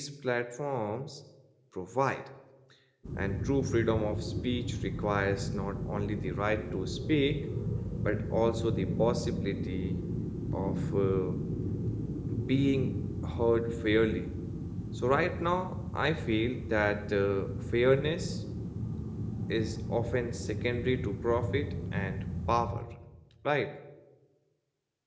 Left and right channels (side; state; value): both; identical; correlation 1.00